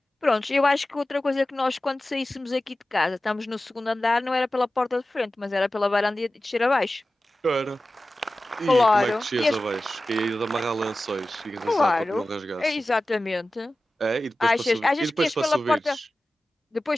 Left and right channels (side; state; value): both; normal; correlation 0.95